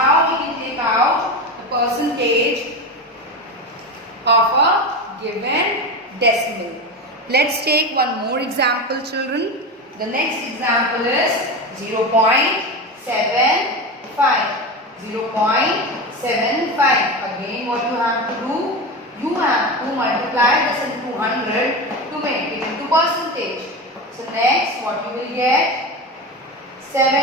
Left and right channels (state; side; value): normal; both; correlation 0.22